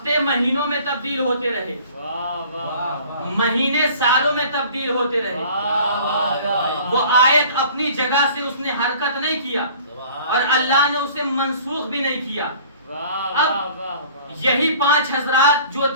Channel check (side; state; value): both; inverted; correlation -0.49